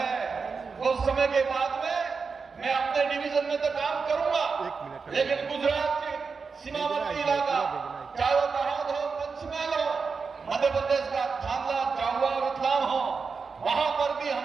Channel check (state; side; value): quieter; left; 5.0 dB